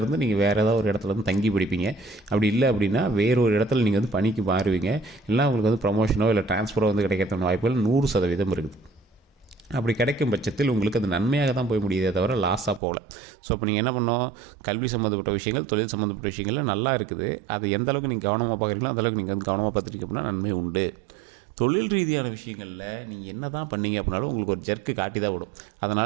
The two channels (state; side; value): drops out; left; at 12.8 s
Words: இருந்து நீங்கள் வேறு ஏதாவது ஒரு இடத்துல இருந்து தங்கி படிப்பீங்க. அப்படி இல்லை அப்படின்னா வேறொரு இடத்துல நீங்கள் வந்து பணிக்கு மாறுவீங்க. இல்லை உங்களுக்கு வந்து ப்ரமோஷனோ இல்லை ட்ரான்ஸ்ஃபரோ வந்து கிடைக்கிறதுக்கான வாய்ப்புகள் 100% இருக்குது. அப்படி கிடைக்கும் பட்சத்தில் உங்களுக்கு அது நன்மையாக தான் போய் முடியுதே தவிர லாஸாக போகல. ஸோ இப்போ நீங்கள் என்ன பண்ணோம், கல்வி சம்மந்தப்பட்ட விஷயங்கள், தொழில் சம்மந்தப்பட்ட விஷயங்கள் நல்லா இருக்குது. அது எந்த அளவுக்கு நீங்கள் கவனமாக பார்க்குறீங்களோ அந்தளவுக்கு நீங்கள் வந்து கவனமாக பார்த்துட்டீங்க அப்படின்னா நன்மை உண்டு. தொழில் ரீதியான விஷயங்களில் நீங்கள் என்ன தான் பண்ணீங்க அப்படின்னாலும் உங்களுக்கு ஒரு ஜர்க்கு காட்டி தான் விடும்.